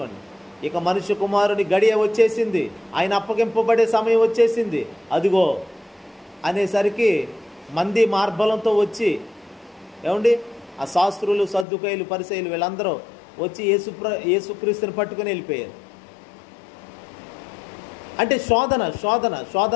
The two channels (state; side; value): drops out; right; at 11.7 s